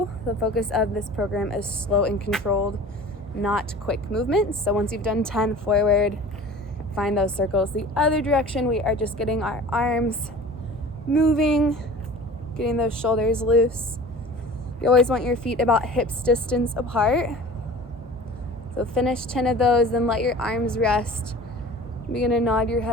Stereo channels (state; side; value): normal; both; correlation 0.41